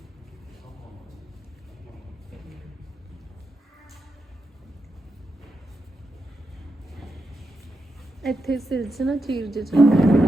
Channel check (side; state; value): both; normal; correlation 0.86